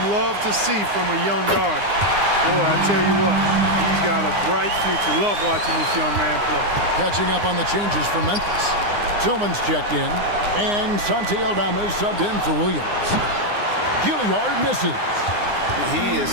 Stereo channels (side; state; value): left; late; 9.7 ms